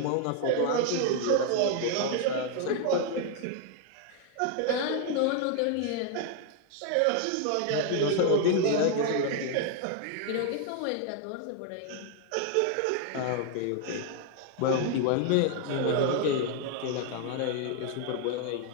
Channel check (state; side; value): different; both; correlation 0.00